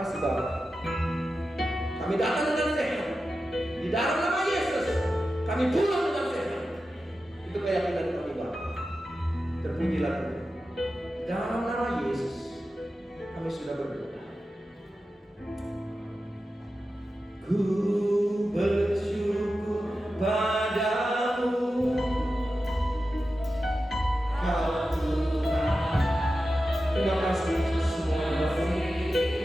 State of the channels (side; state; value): both; normal; correlation 0.92